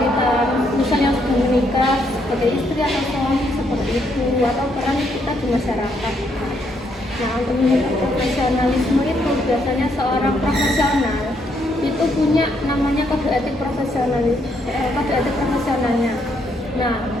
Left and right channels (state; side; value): normal; both; correlation 0.74